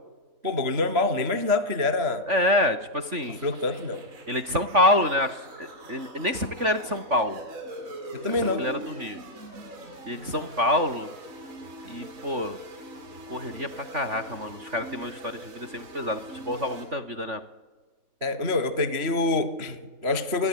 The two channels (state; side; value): late; left; 3.5 ms